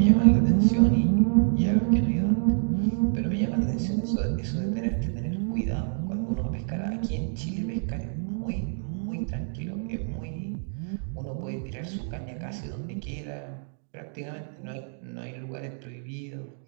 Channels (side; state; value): left; silent; 60 dB below the other